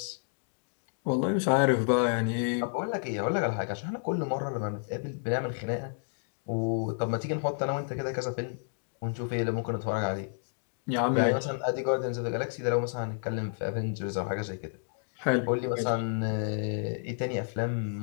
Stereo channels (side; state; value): right; silent; digital silence